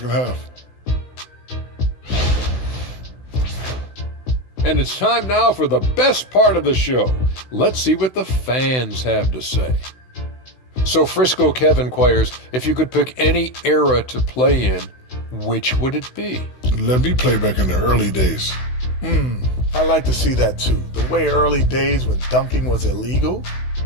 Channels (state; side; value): late; right; 16 ms